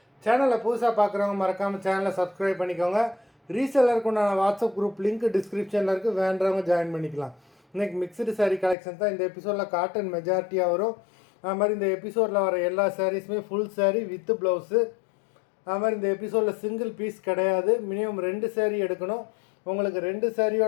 சேனலை புதுசாக பார்க்குறவங்க மறக்காமல் சேனலை சப்ஸ்கிரைப் பண்ணிக்கோங்க. ரீசெல்லருக்கு உண்டான வாட்ஸ்அப் குரூப் லிங்க் டிஸ்கிரிப்ஷனில் இருக்குது, வேண்டவங்க ஜாயின் பண்ணிக்கலாம். இன்றைக்கி மிக்சடு சாரீ கலெக்ஷன் தான் இந்த எபிசோடில். காட்டன் மெஜாரிட்டியாக வரும். அது மாதிரி இந்த எபிசோடில் வர எல்லா சாரீஸுமே ஃபுல் சாரீ வித் ப்ளவுஸு. அது மாதிரி இந்த எபிசோடில் சிங்கிள் பீஸ் கிடையாது, மினிமம் 2 சாரீ எடுக்கணும். உங்களுக்கு 2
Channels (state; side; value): drops out; right; at 8.8 s